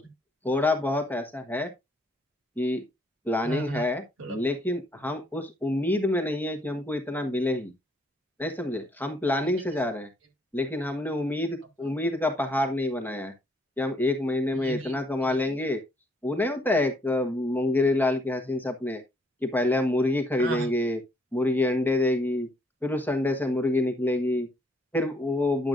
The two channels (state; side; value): normal; both; correlation 0.66